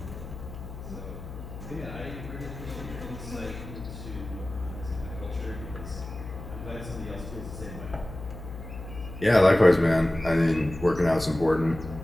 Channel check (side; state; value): left; noise; hum, 11 dB below the sound